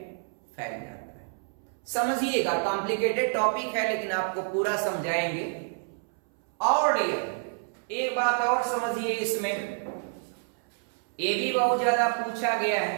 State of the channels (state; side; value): silent; left; 59 dB below the other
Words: फैल जाता है। समझिएगा, कॉम्प्लिकेटेड टॉपिक है लेकिन आपको पूरा समझाएंगे। और एक बात और समझिए, इसमें ये भी बहुत ज्यादा पूछा गया